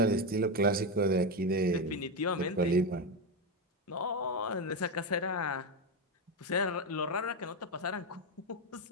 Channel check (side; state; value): both; normal; correlation 0.11